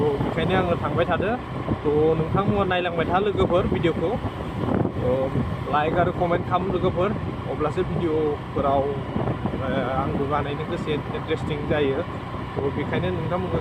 बेखायनो आङो थांबाय थादो नोंथांमोना नायलांबाय था लोगोफोर भिडिअखौ लाइक आरो कमेन्ट खालाम लोगोफोर अब्लासो भिडिअफोराव आंबो बानायनो गोसो इन्टारेस्टिं जायो बेखायनो नोंथांमोनखौ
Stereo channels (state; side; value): identical; both; correlation 1.00